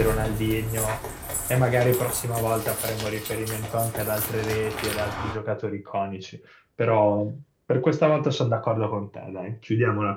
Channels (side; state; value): both; identical; correlation 1.00